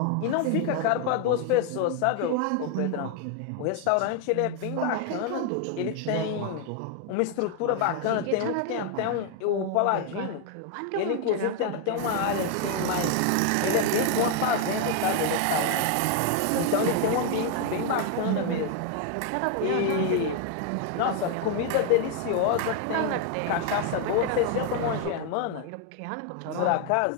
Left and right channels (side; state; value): both; different; correlation 0.01